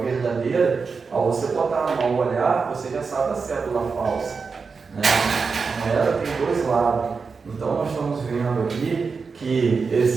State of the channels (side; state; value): left; quieter; 5.0 dB